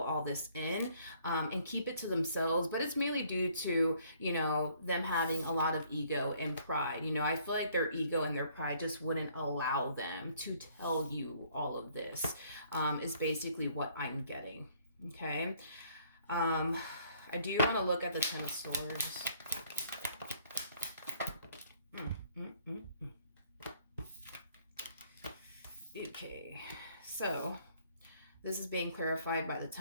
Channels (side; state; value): both; inverted; correlation -0.62